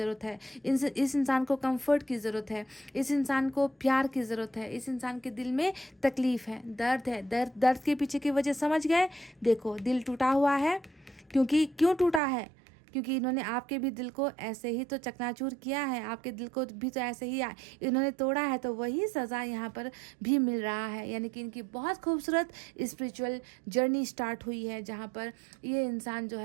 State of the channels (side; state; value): left; drops out; at 12.2 s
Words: है, इस इंसान को कम्फर्ट की ज़रूरत है, इस इंसान को प्यार की ज़रूरत है, इस इंसान के दिल में तकलीफ़ है, दर्द है। दर्द के पीछे की वजह समझ गए। देखो, दिल टूटा हुआ है, क्यों टूटा है, क्योंकि इन्होंने आपके भी दिल को ऐसे ही तो चकनाचूर किया है, आपके दिल को भी तो ऐसे ही इन्होंने तोड़ा है। तो वही सज़ा यहाँ पर भी मिल रहा है, यानी कि इनकी बहुत खूबसूरत स्पिरिचुअल जर्नी स्टार्ट हुई है, जहाँ पर ये इंसान जो